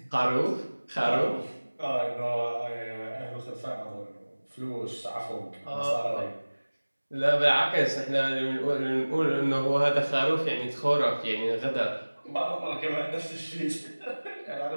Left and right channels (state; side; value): inverted; both; correlation -1.00